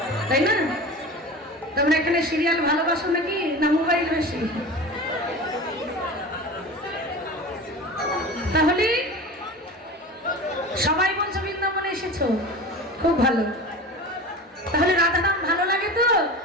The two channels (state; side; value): normal; both; correlation 0.33